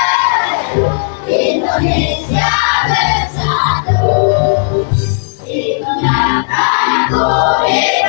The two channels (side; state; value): right; silent; digital silence